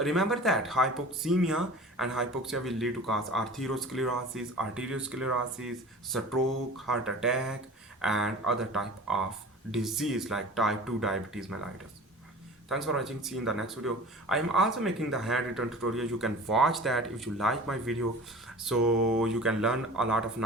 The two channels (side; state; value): both; normal; correlation 0.40